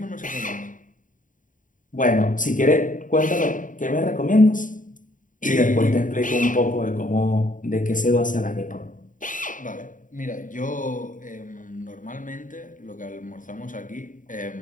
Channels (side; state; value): right; late; 0.38 ms